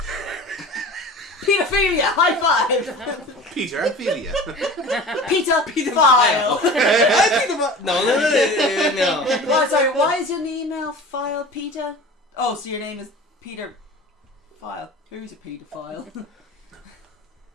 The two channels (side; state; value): both; normal; correlation 0.38